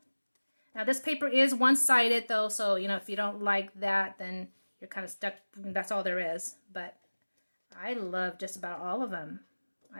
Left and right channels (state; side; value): inverted; both; correlation -1.00